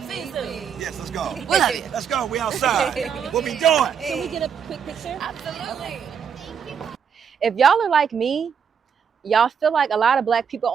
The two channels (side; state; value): left; quieter; 7.2 dB